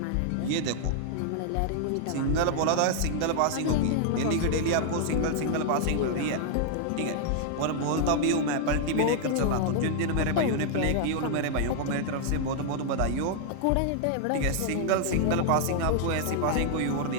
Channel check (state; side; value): different; both; correlation 0.00